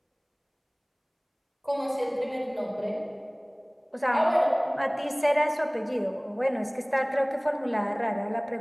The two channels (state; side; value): identical; both; correlation 1.00